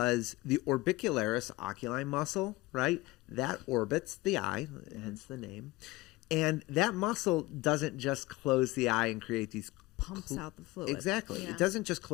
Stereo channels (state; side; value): quieter; right; 20.1 dB